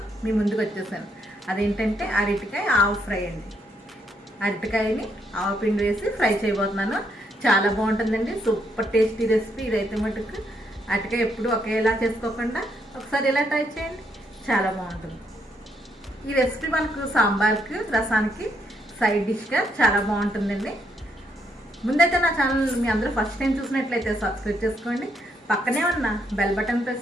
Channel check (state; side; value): normal; both; correlation 0.75